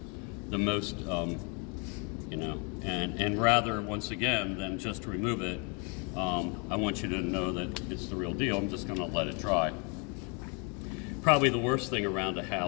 you know, and rather, once again, than just remove it, I want you to know that it's the real deal. I'm just going to let it dry. Probably the worst thing around a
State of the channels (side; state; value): right; quieter; 34.7 dB